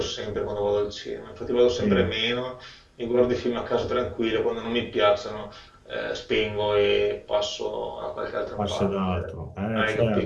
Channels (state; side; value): identical; both; correlation 1.00